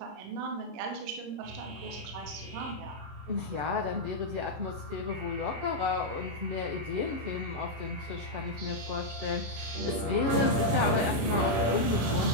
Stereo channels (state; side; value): late; left; 26 ms